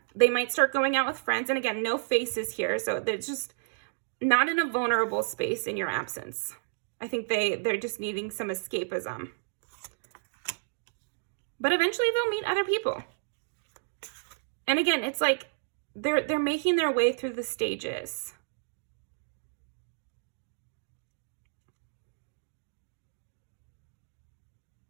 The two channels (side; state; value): left; silent; digital silence